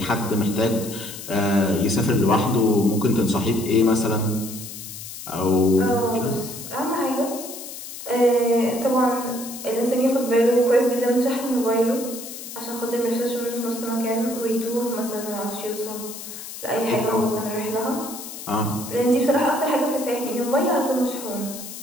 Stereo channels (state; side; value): noise; left; hiss, 11 dB below the sound